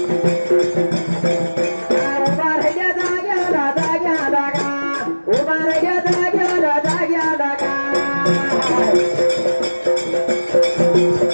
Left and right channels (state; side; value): inverted; both; correlation -1.00